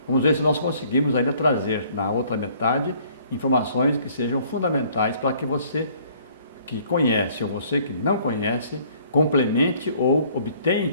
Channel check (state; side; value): inverted; both; correlation -0.59